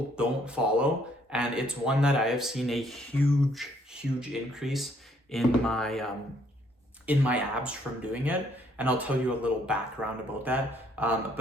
don't follow, and it's one that I have seen a huge increase in my abs from doing it, and I'll tell you a little background about that.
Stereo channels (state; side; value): normal; both; correlation 0.67